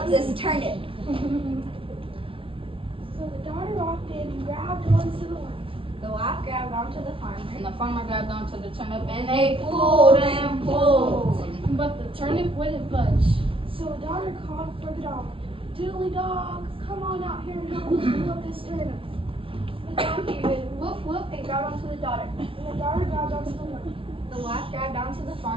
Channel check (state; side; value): late; left; 0.26 ms